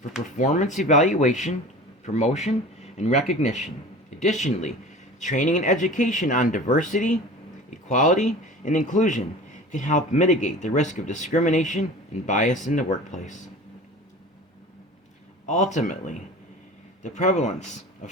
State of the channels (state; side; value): normal; both; correlation 0.38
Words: performance evaluation, promotion, and recognition. Additionally, training and education on diversity, equality, and inclusion can help mitigate the risk of discrimination and bias in the workplace. Ultimately, the prevalence of